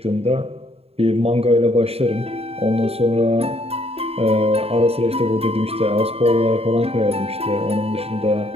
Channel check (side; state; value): left; late; 0.29 ms